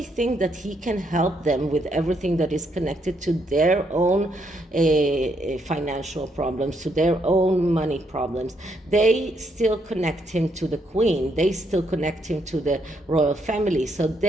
think that he can help them with everything that is connected to their own financial problems, to their own money problems. They still connect him to the Queen. They still connect him to the royal family. So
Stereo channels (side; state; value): both; normal; correlation 0.75